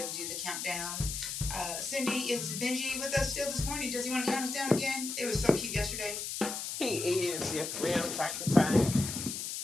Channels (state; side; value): noise; left; hiss, 5 dB below the sound